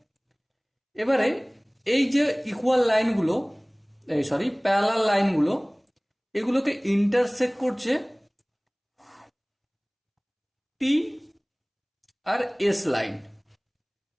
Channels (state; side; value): identical; both; correlation 1.00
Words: এবারে এই যে ইকুয়াল লাইনগুলো, প্যারালাল লাইনগুলো, এগুলোকে ইন্টারসেক্ট করছে টি আর এস লাইন,